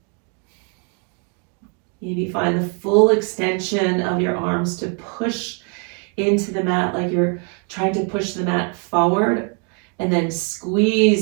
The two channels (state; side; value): quieter; left; 38.9 dB